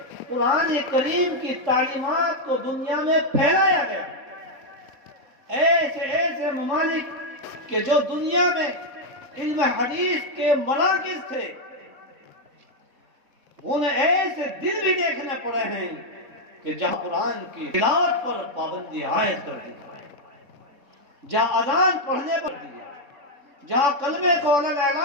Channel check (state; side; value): late; left; 3.7 ms